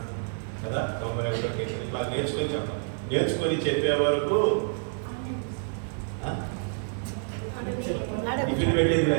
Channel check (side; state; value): left; silent; 59 dB below the other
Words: కదా, 91వ కీర్తన ఇట్లా నేర్చుకొని చెప్పాలి. నేర్చుకొని చెప్పే వరకు టిఫిన్ పెట్టేది